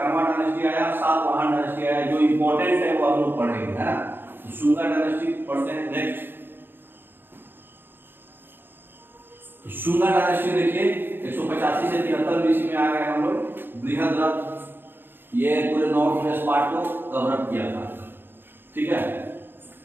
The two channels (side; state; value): left; late; 0.10 ms